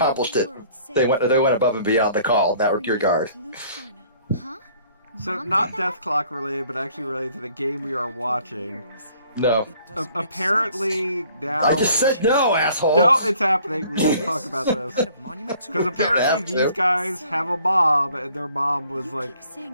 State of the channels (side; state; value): both; inverted; correlation -0.57